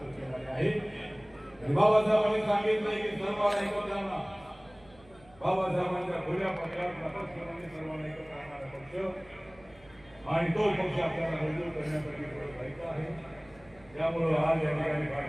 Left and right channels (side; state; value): right; noise; hum, 26 dB below the sound